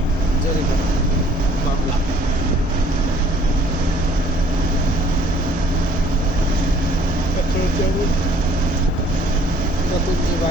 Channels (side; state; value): both; normal; correlation 0.58